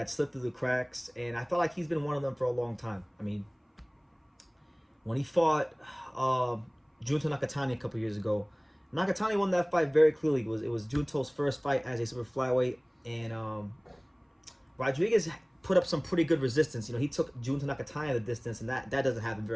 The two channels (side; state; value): both; identical; correlation 1.00